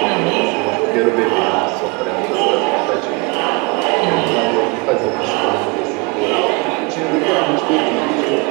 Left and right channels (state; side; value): quieter; left; 29.2 dB